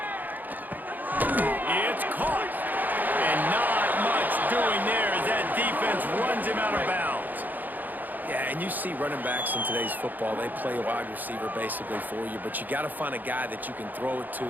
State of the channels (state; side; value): late; left; 0.085 ms